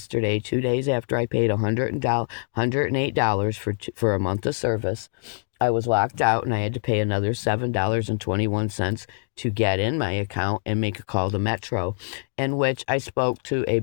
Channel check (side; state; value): right; silent; digital silence